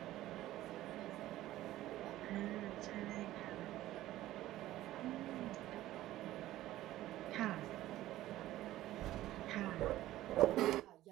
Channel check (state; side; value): quieter; left; 15.0 dB